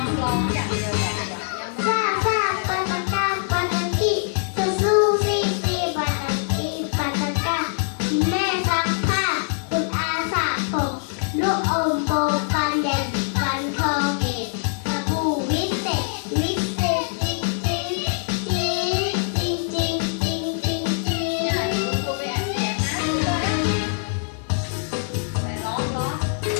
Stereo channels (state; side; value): silent; right; digital silence